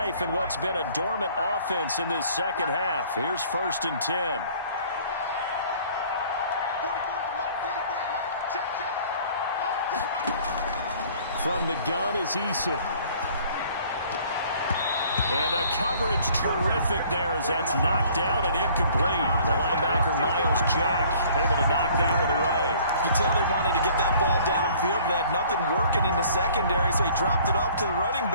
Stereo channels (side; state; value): both; inverted; correlation -0.55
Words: in what's been a dormant offense in this second half. Here's first and 10. From the gun is Eason. And the coverage terrific there as that's knocked out and incomplete. The linebacker, Miles Jack, able to knock that one away. You tell they wanted to get that ball downfield, but they had nothing working in the secondary, so he dropped it off to the running